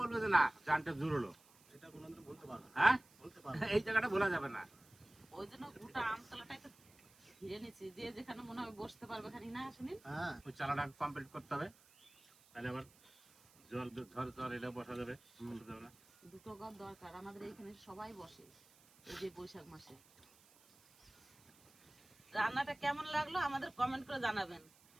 যে না জানটা জুড়লো, এটা কোনোদিন বলতে পারবো না। হ্যাঁ বলতে পারবো এই জায়গাটা ভোলা যাবে না। ওই জন্য গোটা আমতলাটা একটু ঘিরে নিচ্ছি, যে যেখানে মনে হয় বসতে পারবে খানি না শুনি। হ্যাঁ ওই চালাটা কমপ্লিট করতে হবে, তাহলে আবার জল ঝড় ঝড় এটা বসা যাবে, বসা যাবে না। দুটো ঘর দরকার আমাদের এইখানে, সবাই বসে এই যে বৈশাখ মাসে। রান্নাটা কেমন লাগলো আমাদের কমেন্ট করে জানাবেন।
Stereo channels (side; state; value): right; noise; hiss, 27 dB below the sound